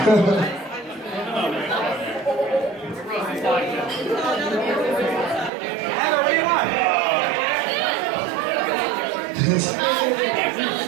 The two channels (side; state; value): left; drops out; at 5.5 s